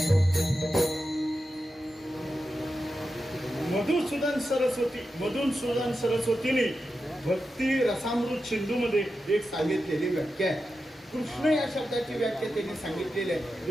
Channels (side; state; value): both; normal; correlation 0.90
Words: मधुसूदन सरस्वतीने भक्ती रसामृत सिंधूमध्ये एक सांगितलेली व्याख्या आहे. कृष्ण या शब्दाची व्याख्या त्यांनी सांगितलेली आहे.